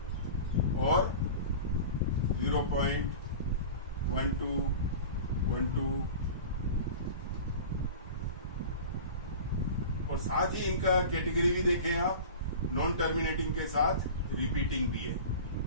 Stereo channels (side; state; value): both; inverted; correlation -0.35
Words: और 0.12 और साथ ही इनका कैटेगरी भी देखें आप, नॉन टर्मिनेटिंग के साथ रिपीटिंग भी है,